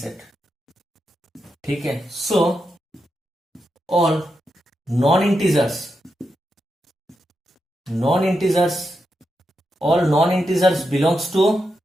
ठीक है। So all non integers belongs to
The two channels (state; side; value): normal; both; correlation 0.86